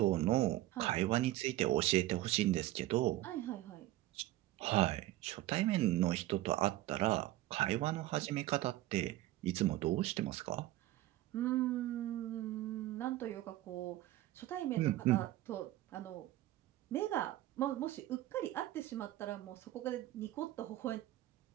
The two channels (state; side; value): quieter; left; 15.8 dB